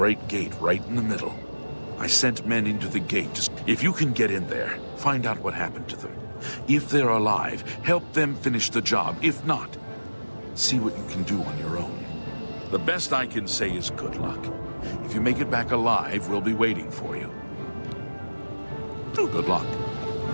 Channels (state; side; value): inverted; both; correlation -1.00